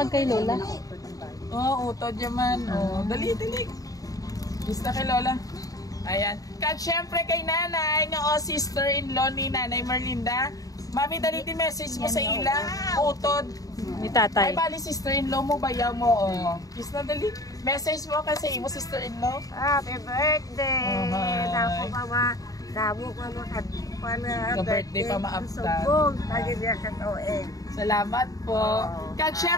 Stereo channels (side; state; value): right; late; 0.17 ms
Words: kay Lola. Oo, utod yaman. Oh, dali. Kiss na kay Lola. Ayan. Kag syempre kay nanay, nga sister-in-law ni Nanay Merlinda. Mami, dali din message mo sa ila. Utod. Ni tatay. Ay, bali sister-in-law mo, bayaw mo. Oh. Kiss na dali. Message mo kasi imo sister-in-law. Happy birthday! Damo ka ma. Ka-birthday pa maaptan. Subong, nagigya ka toeng. Salamat po. Kag